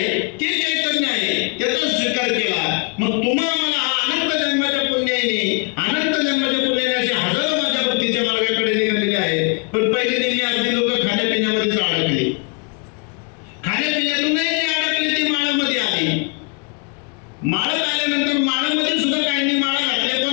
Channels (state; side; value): quieter; right; 34.4 dB